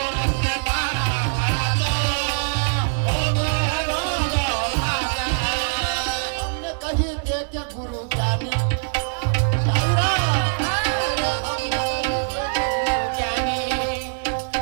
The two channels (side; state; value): left; silent; digital silence